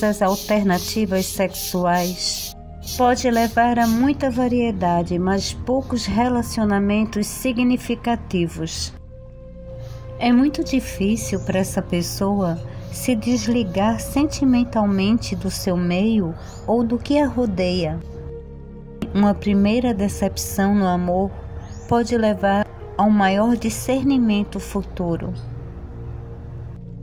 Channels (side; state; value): both; identical; correlation 1.00